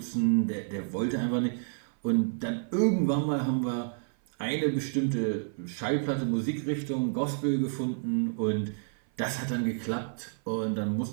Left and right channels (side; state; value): left; silent; 55 dB below the other